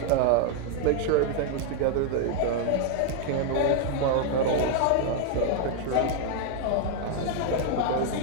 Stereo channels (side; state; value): both; different; correlation 0.00